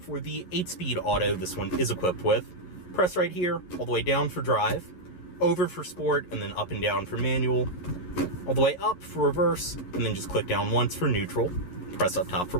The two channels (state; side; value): late; right; 11 ms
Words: the 8-speed auto this one is equipped with. Press right here, all the way down for drive, over for sport, and then up and down for manual. All the way up for reverse, and then just click down once for neutral. Press up top for